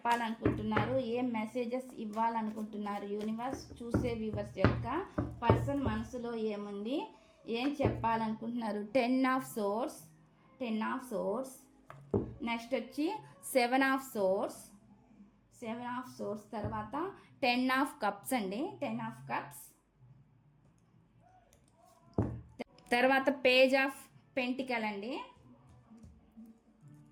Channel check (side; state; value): both; identical; correlation 1.00